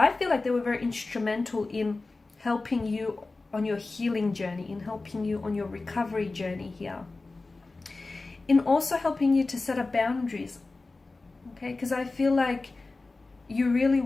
feel like they were very instrumental in helping you on your healing journey, in helping you on your recovery journey here, in also helping you to set up boundaries, okay? Because I feel like you really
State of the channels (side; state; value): right; quieter; 3.5 dB